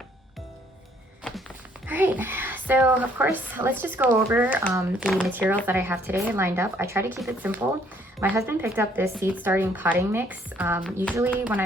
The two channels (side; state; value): both; normal; correlation 0.64